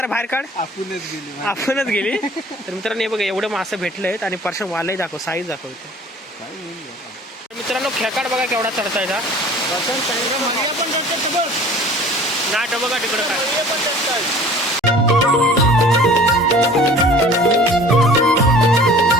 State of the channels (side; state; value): both; normal; correlation 0.47